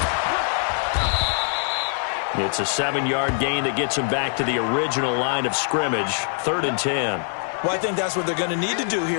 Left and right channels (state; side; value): silent; right; digital silence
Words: It's a 7-yard gain that gets him back to the original line of scrimmage, 3rd and 10. Well, I think that's what they're going to need to do